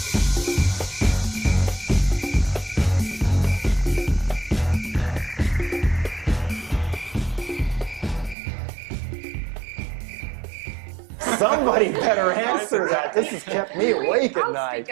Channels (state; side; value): drops out; left; at 8.3 s